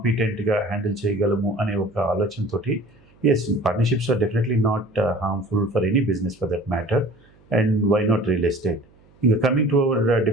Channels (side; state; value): right; noise; hum, 30 dB below the sound